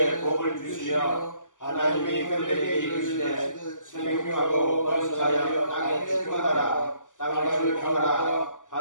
복을 주시며 하나님이 그들에게 이르시되 생육하고 번성하여 땅에 주권하라 땅을 평하라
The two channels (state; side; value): late; right; 0.87 ms